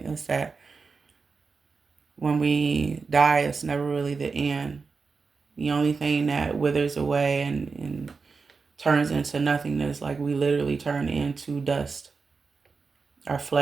is that when we die, it's never really the end. The only thing that withers away and turns into nothingness, like we literally turn into dust. Our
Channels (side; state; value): left; quieter; 4.7 dB